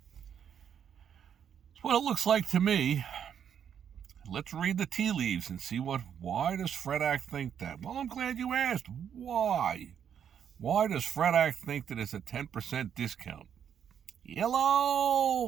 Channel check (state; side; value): quieter; left; 8.5 dB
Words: That's what it looks like to me. Let's read the tea leaves and see why does Fredak think that? Well, I'm glad you asked. Why? Why does Fredak think that it's a 10% discount?